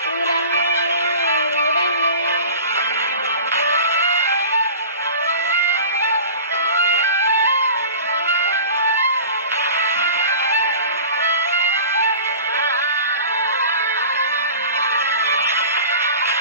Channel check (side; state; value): both; inverted; correlation -0.39